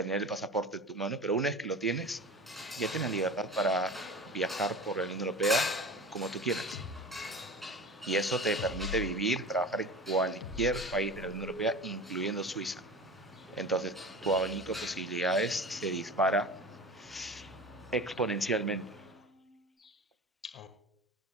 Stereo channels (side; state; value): both; normal; correlation 0.34